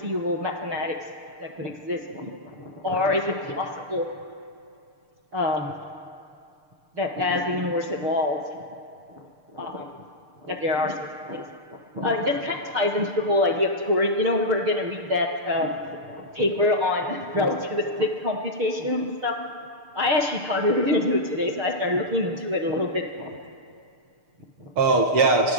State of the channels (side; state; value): left; late; 6.7 ms